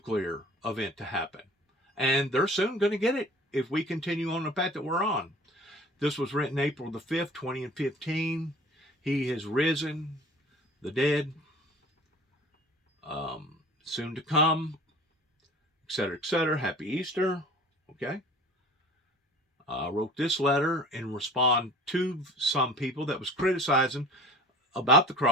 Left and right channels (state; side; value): normal; both; correlation 0.44